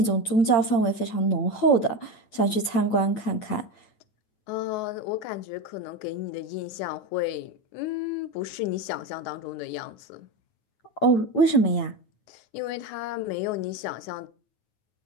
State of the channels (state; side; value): late; right; 8.8 ms